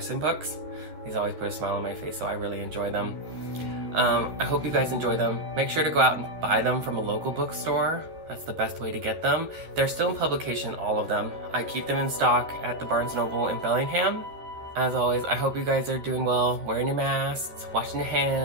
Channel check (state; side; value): late; left; 12 ms